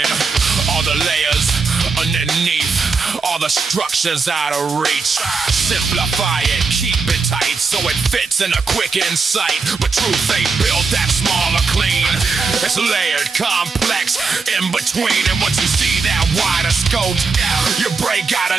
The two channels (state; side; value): quieter; left; 4.7 dB